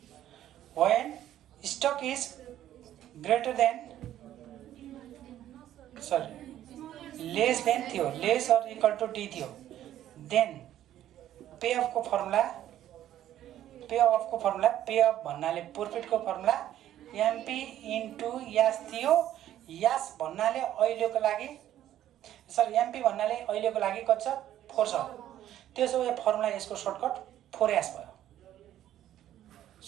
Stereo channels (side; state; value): left; quieter; 12.1 dB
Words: when stock is greater than less than थियो, less or equal to D थियो। देन पे अफको फर्मुला पे अफ भन्नाले प्रॉफिटको फर्मुला एमपी इन्टु यास थियो। यास भन्नाले अहिलेको लागि एमपी भन्नाले अहिलेको लागि कति छ? 4 छ। त्यसो भए फर्मुला यसको सर्टकट 4S भयो।